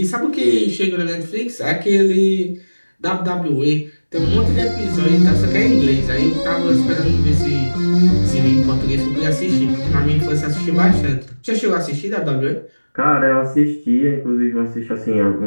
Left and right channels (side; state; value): both; inverted; correlation -1.00